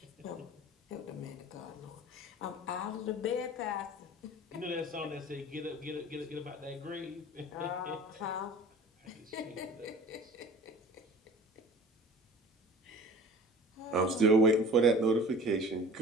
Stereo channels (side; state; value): both; normal; correlation 0.42